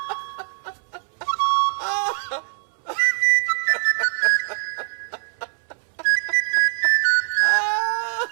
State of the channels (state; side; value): silent; left; 64 dB below the other